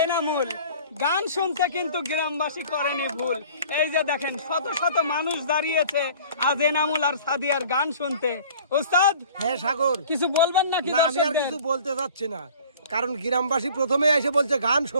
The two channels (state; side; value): inverted; both; correlation -0.48